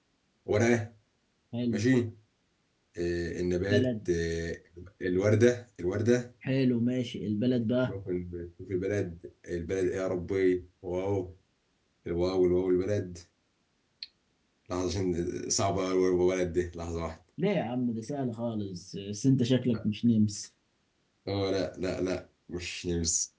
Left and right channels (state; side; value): identical; both; correlation 1.00